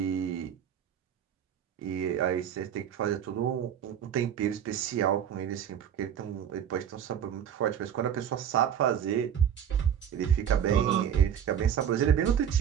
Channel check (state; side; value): quieter; left; 9.0 dB